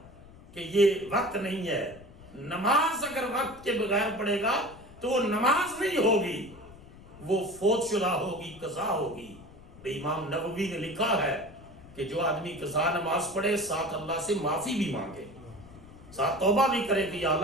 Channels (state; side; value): noise; left; rumble, 20 dB below the sound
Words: کہ یہ وقت نہیں ہے۔ نماز اگر وقت کے بغیر پڑھے گا تو وہ نماز نہیں ہوگی، وہ فوت شدہ ہوگی، قضا ہوگی۔ امام نووی نے لکھا ہے کہ جو آدمی قضا نماز پڑھے، ساتھ اللہ سے معافی بھی مانگے، ساتھ توبہ بھی کرے کہ یا